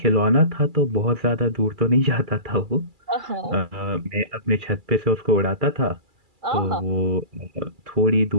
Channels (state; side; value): late; left; 2.3 ms